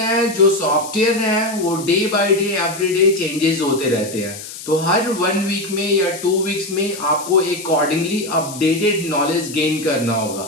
जो सॉफ्टवेयर है, वो day by day every day changes होते रहते हैं. तो हर 1 वीक में या 2 वीक्स में आपको अकॉर्डिंगली अपडेटेड नॉलेज गेन करना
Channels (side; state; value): left; noise; hiss, 12 dB below the sound